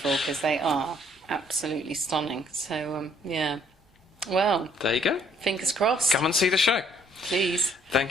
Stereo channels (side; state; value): both; normal; correlation 0.64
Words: because they are absolutely stunning. So, yeah. Well, there you go. Fingers crossed. Come and see the show. Please.